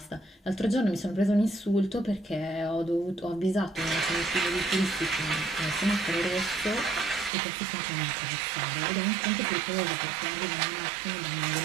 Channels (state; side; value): drops out; left; at 7.3 s